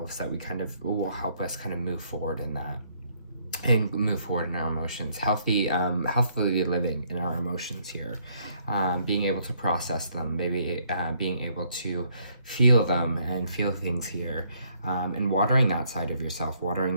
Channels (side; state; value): both; inverted; correlation -0.69